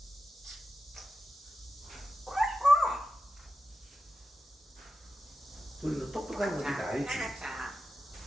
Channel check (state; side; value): normal; both; correlation 0.91